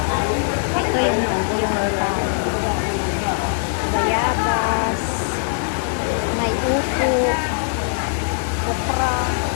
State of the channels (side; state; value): right; silent; digital silence